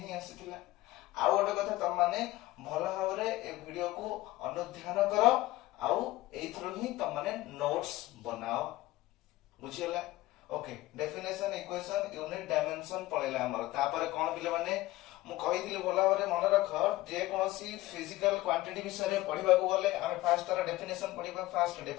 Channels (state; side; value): quieter; right; 17.8 dB